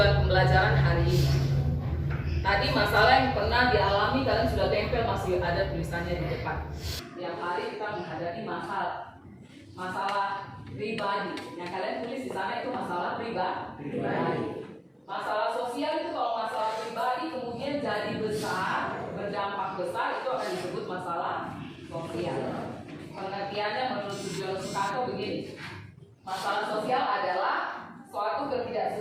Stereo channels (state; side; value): identical; both; correlation 1.00